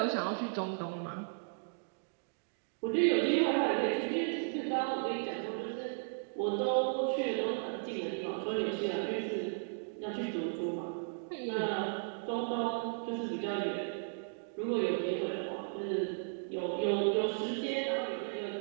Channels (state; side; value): silent; left; digital silence